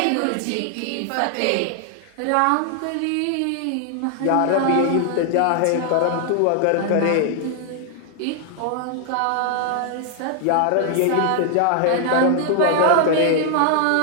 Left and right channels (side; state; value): both; different; correlation 0.00